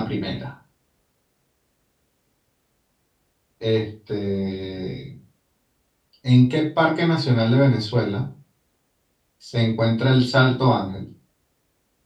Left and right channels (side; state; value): both; identical; correlation 1.00